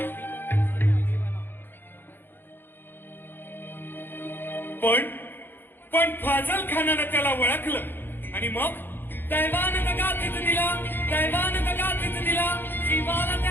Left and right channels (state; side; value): late; right; 0.099 ms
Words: पण फाजल खानानं त्याला ओळखलं आणि मग दैवान दगा तिथं दिला, दैवान दगा तिथं दिला. शिवाला